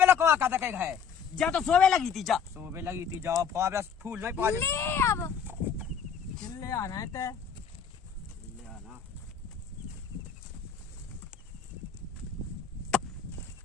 कहा कहता कहीं है जा तो सोवे लगी थी जा सुबह लगी थी जाओ फावड़ा फूल नहीं पा ले अब चिल्ले आना है ते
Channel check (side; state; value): right; quieter; 6.9 dB